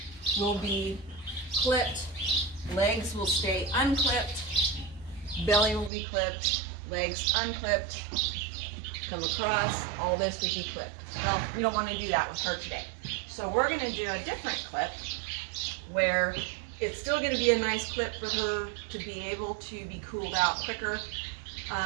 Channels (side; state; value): left; drops out; at 5.9 s